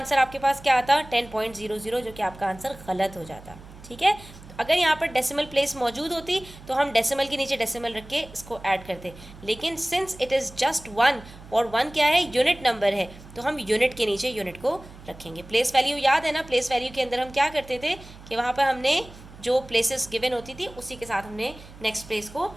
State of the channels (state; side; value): noise; right; hum, 19 dB below the sound